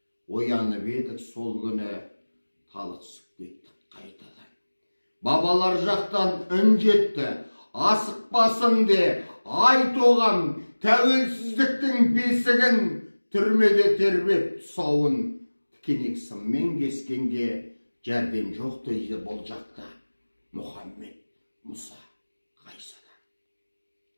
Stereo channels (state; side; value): inverted; both; correlation -1.00